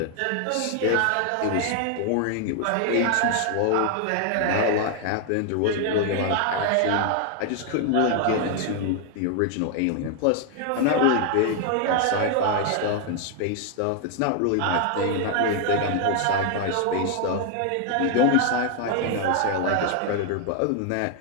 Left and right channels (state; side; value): different; both; correlation 0.00